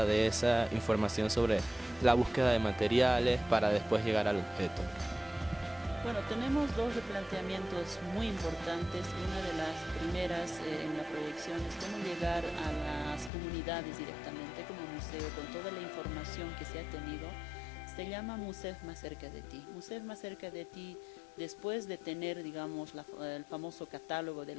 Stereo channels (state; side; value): drops out; right; at 13.3 s